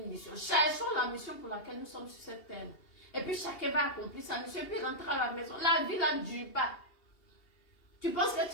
mission. Cherchons la mission pour laquelle nous sommes sur cette terre. Et puis, chacun va accomplir sa mission. Et puis, rentrer à la maison. La vie, là, ne dure pas. Tu penses que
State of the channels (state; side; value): late; right; 2.8 ms